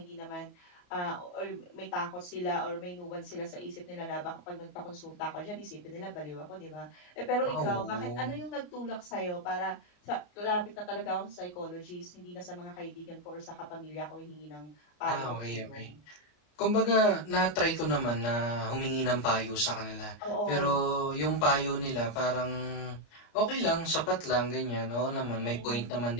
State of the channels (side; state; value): right; late; 34 ms